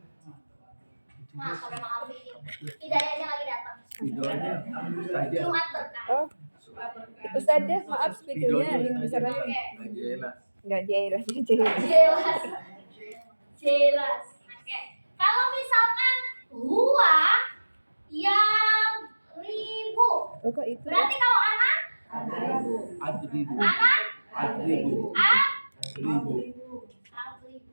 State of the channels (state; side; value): inverted; both; correlation -1.00